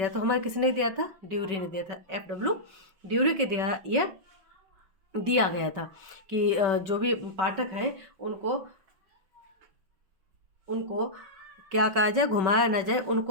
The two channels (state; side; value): late; left; 5.3 ms